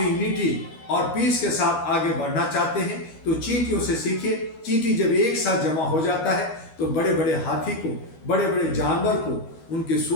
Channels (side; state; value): right; late; 13 ms